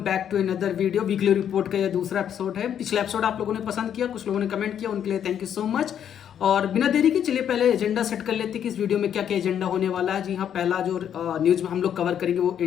to another video. Weekly report का यह दूसरा एपिसोड है। पिछला एपिसोड आप लोगों ने पसंद किया, कुछ लोगों ने कमेंट किया, उनके लिए थैंक यू सो मच। और बिना देरी के चलिए पहले एजेंडा सेट कर लेते हैं कि इस वीडियो में क्या क्या एजेंडा होने वाला है। जी हाँ, पहला जो न्यूज़ में हम लोग कवर करेंगे वो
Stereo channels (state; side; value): quieter; right; 9.2 dB